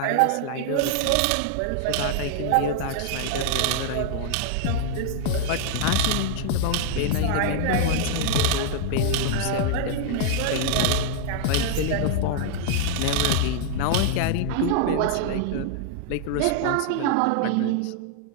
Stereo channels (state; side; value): different; both; correlation 0.00